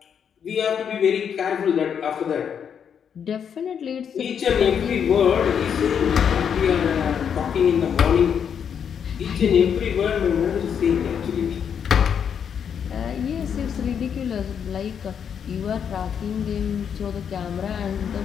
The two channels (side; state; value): right; quieter; 7.7 dB